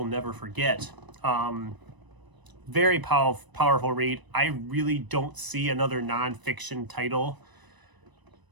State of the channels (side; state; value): left; late; 1.0 ms